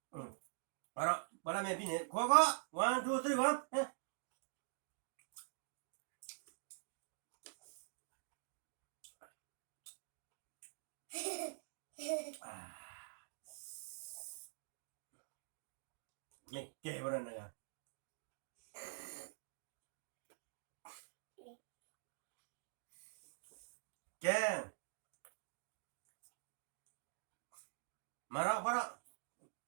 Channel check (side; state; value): left; silent; digital silence